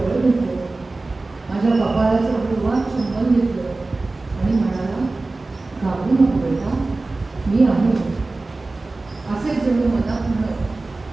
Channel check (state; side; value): quieter; left; 3.3 dB